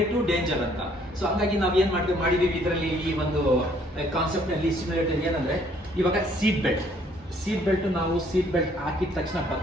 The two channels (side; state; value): both; normal; correlation 0.63